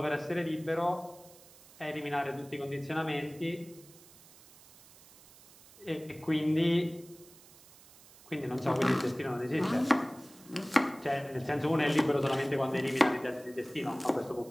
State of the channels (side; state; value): right; noise; hiss, 23 dB below the sound